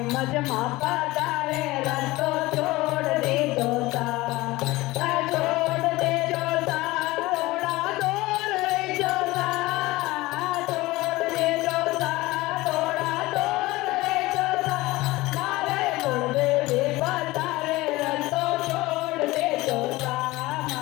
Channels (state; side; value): quieter; right; 19.7 dB